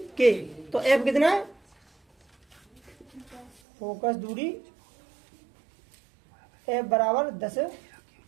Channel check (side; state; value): left; drops out; at 3.5 s